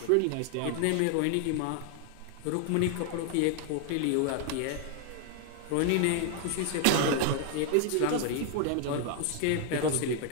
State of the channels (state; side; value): different; both; correlation 0.00